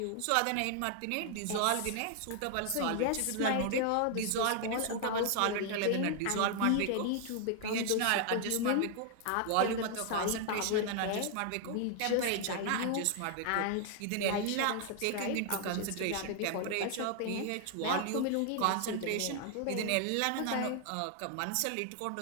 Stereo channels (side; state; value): both; different; correlation 0.00